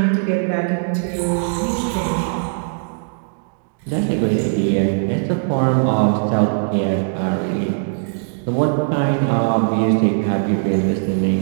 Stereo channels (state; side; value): silent; left; digital silence